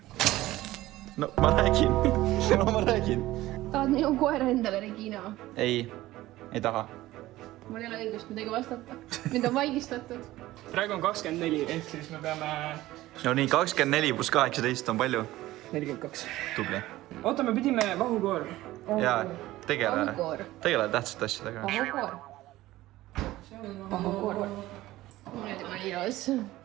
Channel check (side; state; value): left; quieter; 16.6 dB